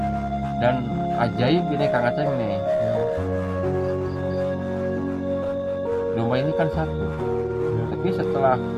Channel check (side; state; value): both; identical; correlation 1.00